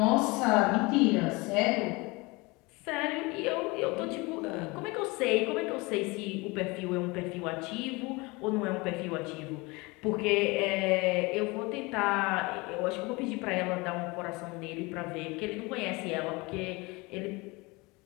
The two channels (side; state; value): right; quieter; 25.0 dB